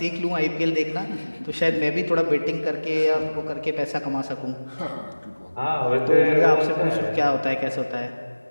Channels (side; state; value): both; inverted; correlation -1.00